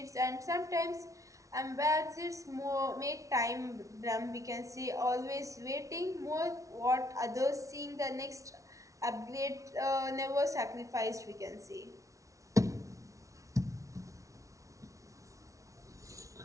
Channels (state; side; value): late; left; 0.16 ms